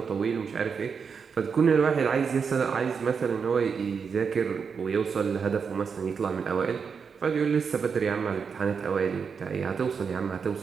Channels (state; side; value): quieter; left; 6.0 dB